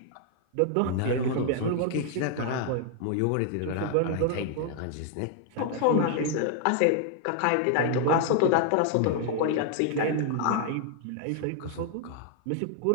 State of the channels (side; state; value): both; different; correlation 0.00